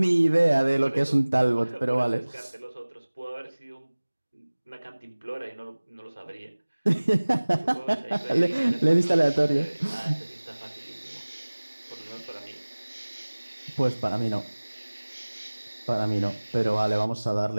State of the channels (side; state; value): both; inverted; correlation -1.00